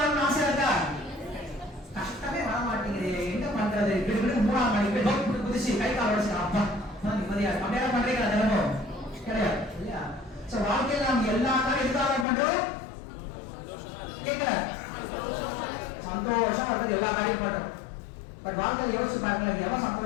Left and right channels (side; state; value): right; drops out; at 12.2 s